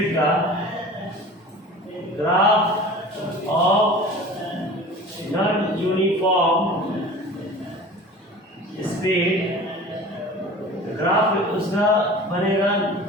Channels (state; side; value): normal; both; correlation 0.40